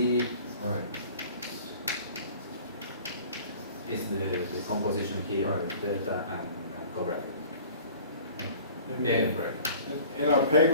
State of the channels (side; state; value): both; inverted; correlation -0.48